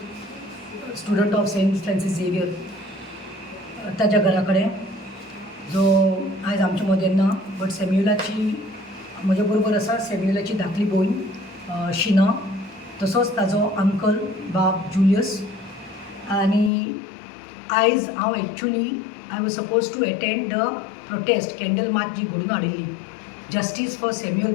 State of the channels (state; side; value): drops out; right; at 16.7 s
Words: student of Saint Francis Xavier, ताच्या घरा कडेन, जो आयज आमचे मदें ना. बट सॅम्युअलाची म्हजे बरोबर आसा सॅम्युअलाची धाकली भयण शिना, तसोच ताजो अंकल बाब जुलियस. आनी आयज हांव actually I was supposed to attend the protest, candle march जी घडून हाडिल्ली, justice for Samuel